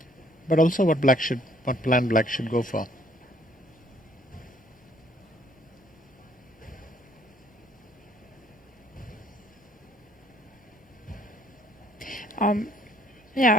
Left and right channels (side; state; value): both; normal; correlation 0.63